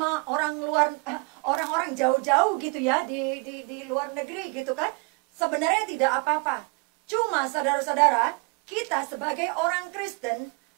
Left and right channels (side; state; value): left; quieter; 31.5 dB